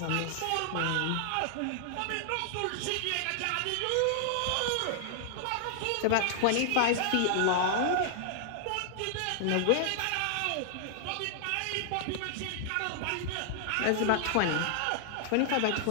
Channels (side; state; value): both; different; correlation -0.01